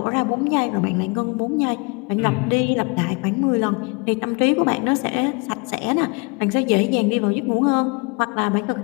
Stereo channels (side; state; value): right; quieter; 30.0 dB